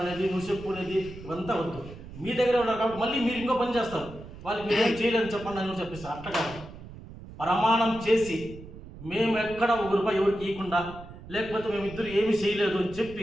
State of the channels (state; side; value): noise; right; rumble, 15 dB below the sound